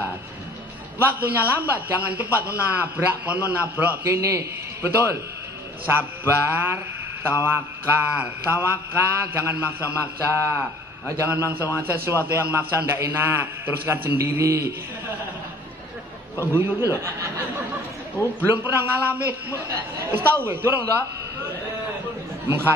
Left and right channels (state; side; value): normal; both; correlation 0.52